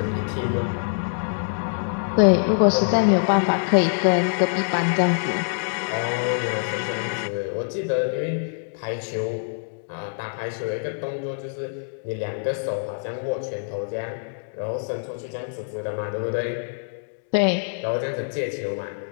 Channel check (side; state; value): right; silent; digital silence